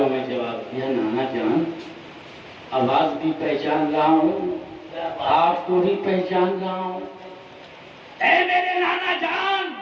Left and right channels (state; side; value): identical; both; correlation 1.00